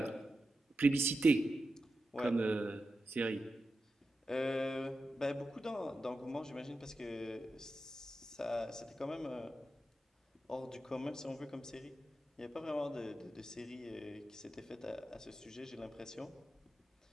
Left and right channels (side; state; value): both; normal; correlation 0.90